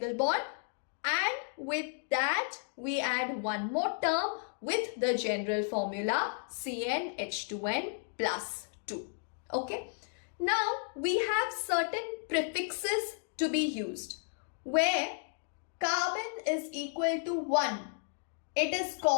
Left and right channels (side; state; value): right; silent; 56 dB below the other